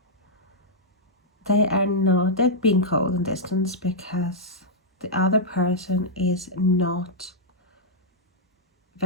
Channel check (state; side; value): normal; both; correlation -0.08